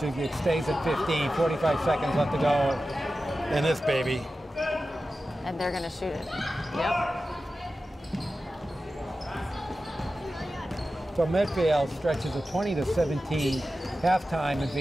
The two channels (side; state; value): both; normal; correlation 0.93